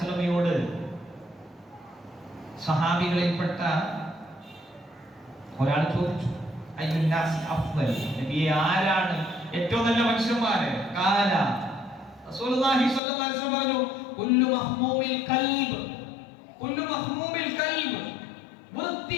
സഹാബികളിൽപ്പെട്ട ഒരാൾ ചോദിച്ചു, അയ്യുന്നാസി അഫ്ദൽ, നബിയെ ആരാണ് ഏറ്റവും നല്ല മനുഷ്യന്മാര്? ഖാല റസൂലുള്ളാഹി സ്വല്ലല്ലാഹു അലൈഹി വസല്ലം പറഞ്ഞു, കുല്ലു മഹ്മൂമിൽ ഖൽബ്, കുല്ലു മഹ്മൂമിൽ ഖൽബ്,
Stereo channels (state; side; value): drops out; right; at 13.0 s